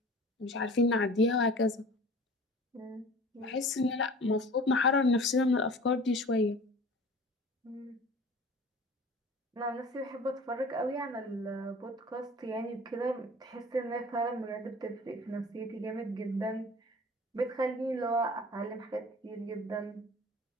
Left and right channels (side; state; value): both; normal; correlation 0.43